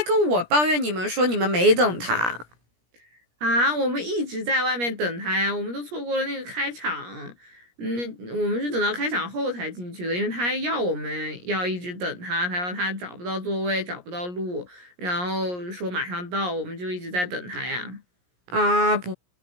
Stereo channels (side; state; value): left; late; 17 ms